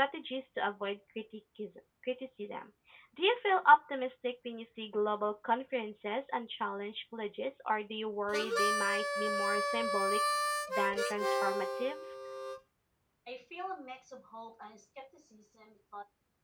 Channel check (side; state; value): both; identical; correlation 1.00